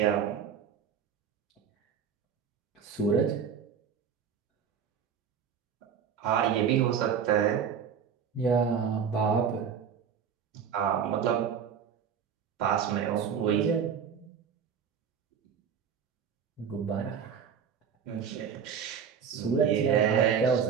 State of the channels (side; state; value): left; quieter; 7.3 dB